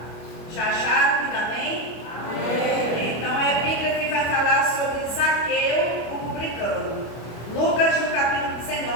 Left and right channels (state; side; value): late; right; 25 ms